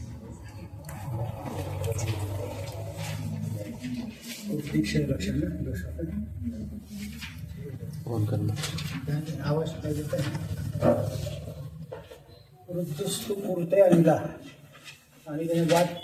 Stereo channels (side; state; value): both; identical; correlation 1.00